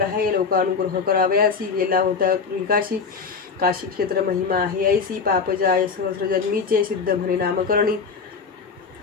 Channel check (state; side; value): quieter; right; 5.3 dB